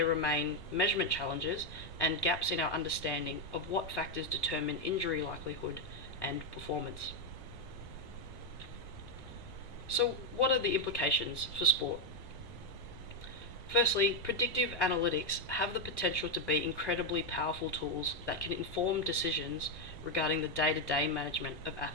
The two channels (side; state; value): right; late; 1.1 ms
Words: remain measurement challenges and gaps in our understanding of what factors determine injury likelihood and performance. So, what are the implications for sport? Firstly, predictive analytics have the potential to be incredibly powerful tools that can inform decisions regarding the day-to-day management of